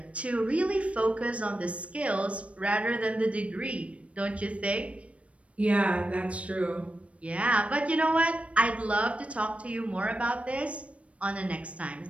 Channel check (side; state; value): left; late; 0.063 ms